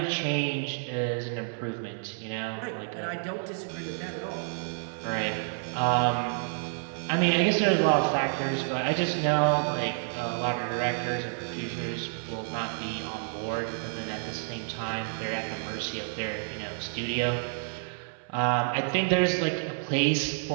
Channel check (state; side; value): silent; left; 57 dB below the other